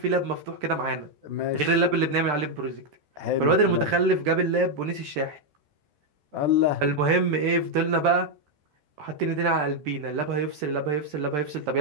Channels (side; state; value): left; late; 14 ms